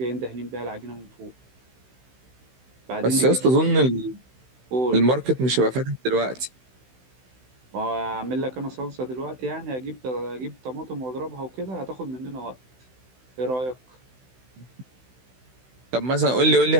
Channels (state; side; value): late; left; 16 ms